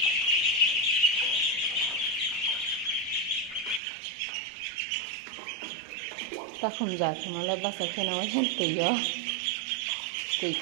Takhum jat mala basa khena wasen tuyo. Tui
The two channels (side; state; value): left; drops out; at 3.8 s